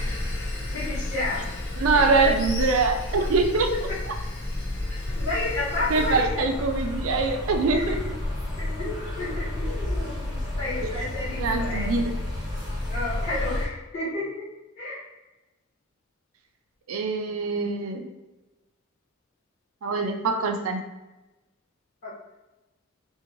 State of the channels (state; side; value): normal; both; correlation 0.20